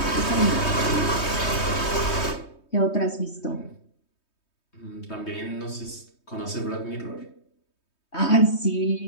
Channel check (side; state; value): right; late; 3.2 ms